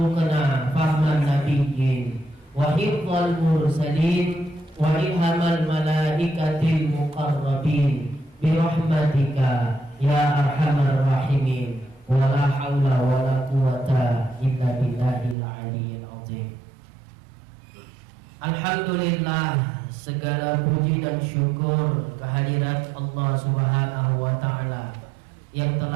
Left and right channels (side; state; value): left; drops out; at 15.4 s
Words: fahman nabiyyin wa hifdzal mursalin wa ilhamal malaikatil muqarrabin bi rahmatika ya arhamar rahimin. Wala haula wala quwata illa billahil aliyyil azim. Alhamdulillah, segala puji dan syukur kehadirat Allah Subhanahu wa taala yang